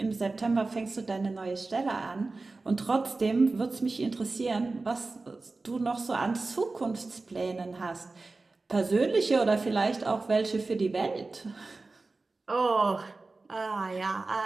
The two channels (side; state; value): left; quieter; 3.5 dB